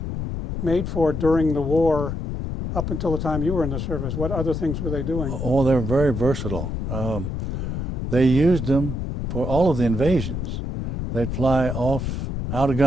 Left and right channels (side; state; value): left; noise; rumble, 4 dB below the sound